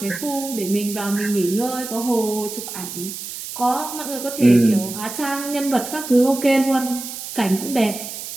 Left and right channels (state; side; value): noise; right; hiss, 9 dB below the sound